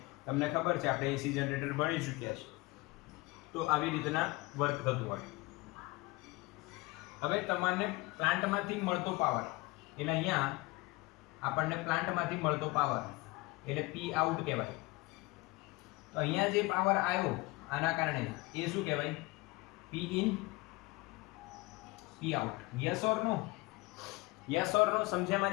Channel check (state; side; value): quieter; right; 22.8 dB